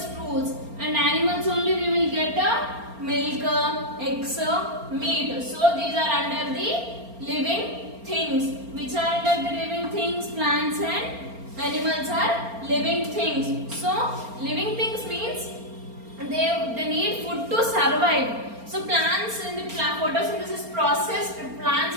fruits, and animals only we will get milk, eggs, meat. So these are under the living things. Which are under the living things? Plants and animals are living things. So living things means they need food to survive. So plants in the photosynthesis process, plants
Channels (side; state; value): left; late; 4.3 ms